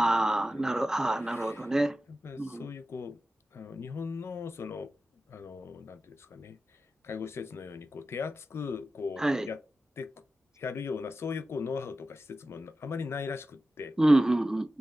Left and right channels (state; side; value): normal; both; correlation 0.93